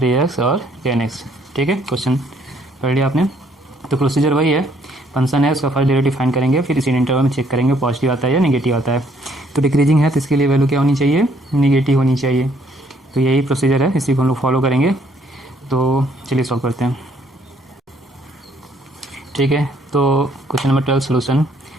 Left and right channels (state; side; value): normal; both; correlation 0.66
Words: 3x और tan x। ठीक है, क्वेश्चन पढ़ लिया आपने। तो प्रोसीजर वही है, फंक्शन है उसका फर्स्ट डेरिवेटिव फाइंड करेंगे, फिर इसी इंटरवल में चेक करेंगे पॉजिटिव आता है या नेगेटिव आता है। तो डिक्रीजिंग है तो इसके लिए वैल्यू क्या होनी चाहिए, नेगेटिव होनी चाहिए। तो यही प्रोसीजर है, इसी को हम लोग फॉलो करेंगे। तो चलिए सॉल्व करते हैं। ठीक है, तो क्वेश्चन नंबर 12 सोल्यूशन।